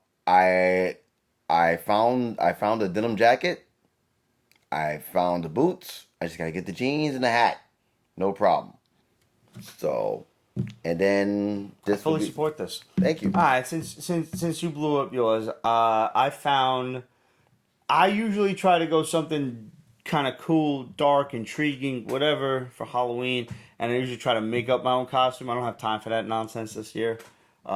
found a denim jacket. I found the boots. I just got to get the jeans and the hat. No problem. So, and then I fully support this. Thank you. All right, since you blew up yours, I usually try to go something kind of cool, dark, intriguing, whatever for Halloween, and I usually try to make up my own costume. I don't have time for that nonsense this year.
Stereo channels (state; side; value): identical; both; correlation 1.00